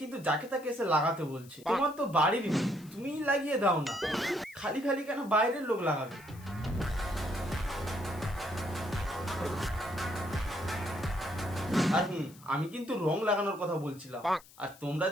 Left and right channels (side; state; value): left; noise; hiss, 23 dB below the sound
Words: কিন্তু যাকে তাকে এসে লাগাতে বলছে। তোমার তো বাড়ির মেয়ে, তুমিই লাগিয়ে দাও না। খালি খালি কেন বাইরের লোক লাগাবে? আর আমি কিন্তু রং লাগানোর কথা বলছিলাম, আর তোমরা